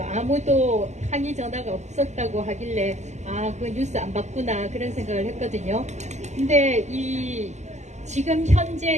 아무도 항의 전화가 없었다고 하길래 그 뉴스 안 봤구나 그런 생각을 했거든요. 근데 지금 현재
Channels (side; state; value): left; late; 0.33 ms